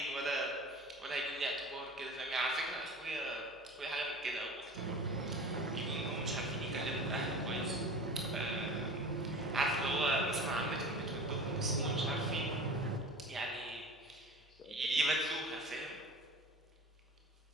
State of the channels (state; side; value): normal; both; correlation 0.37